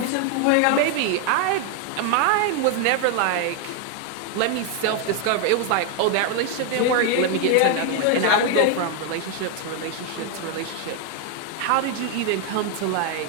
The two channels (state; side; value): different; both; correlation 0.01